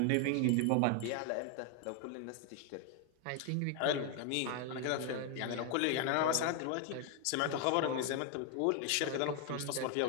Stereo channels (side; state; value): both; different; correlation 0.00